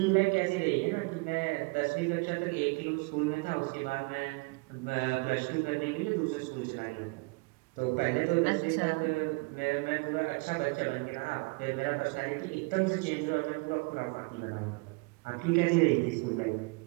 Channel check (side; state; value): left; quieter; 29.6 dB